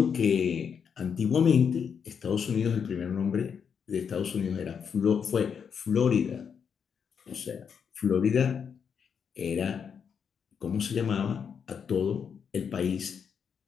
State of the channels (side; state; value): right; quieter; 7.0 dB